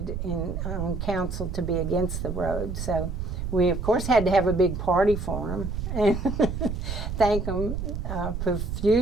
on council to be against the road. So we, of course, had to have a big party for him and thank him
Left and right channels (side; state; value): right; noise; rumble, 4 dB below the sound